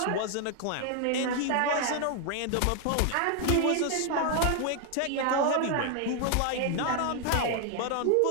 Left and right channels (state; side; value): different; both; correlation 0.00